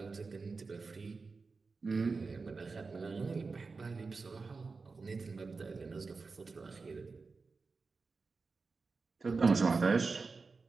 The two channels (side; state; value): left; quieter; 4.3 dB